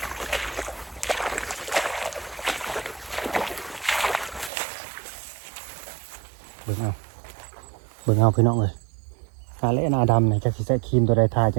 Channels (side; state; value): left; drops out; at 4.5 s